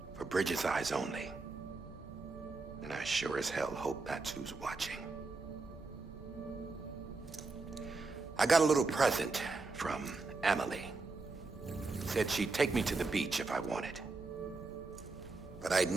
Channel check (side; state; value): left; quieter; 3.8 dB